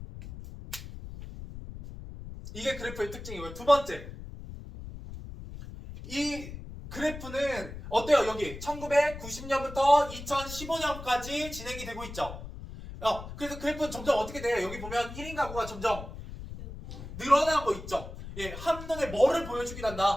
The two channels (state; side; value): noise; left; rumble, 11 dB below the sound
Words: 이게 그래프의 특징이고요. 두 번째, 이 그래프는 어때요? 여기 1990년부터 2015년까지 진행이 되고 있죠. 그래서 그래프는 점점 어떻게 돼요? 여기 보면 1인 가구가 점점 늘어나고 있죠. 예, 한눈에 뭐를 보여주긴